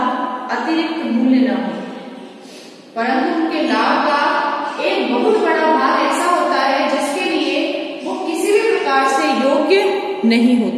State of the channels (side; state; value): both; identical; correlation 1.00